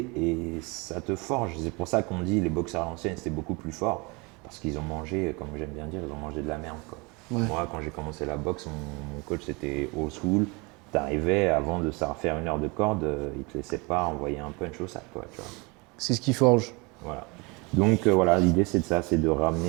et ça te forge. C'est pour ça qu'on dit les boxeurs à l'ancienne, c'était beaucoup plus fort, parce qu'ils ont mangé, comme j'aime bien dire, ils ont mangé de la merde, quoi. Ouais. Moi, quand j'ai commencé la boxe, mon coach c'était old school. T'arrivais, avant de savoir faire 1 heure de corde, il te laissait pas envoyer un punch au sac, quoi, tu vois. C'est ce qui forge. Voilà. Donc voilà, l'idée c'est de ça, c'est de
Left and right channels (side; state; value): left; quieter; 27.7 dB